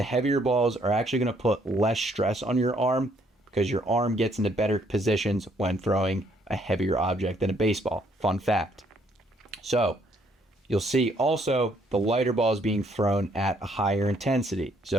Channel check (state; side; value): normal; both; correlation 0.68